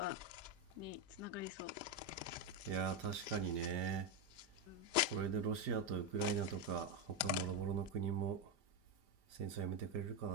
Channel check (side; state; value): left; late; 5.0 ms